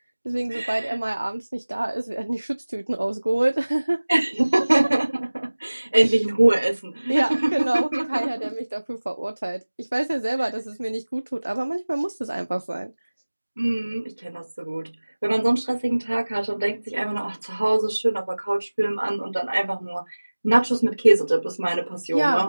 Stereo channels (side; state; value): both; inverted; correlation -1.00